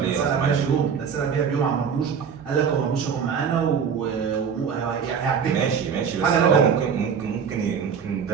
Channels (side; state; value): left; quieter; 6.9 dB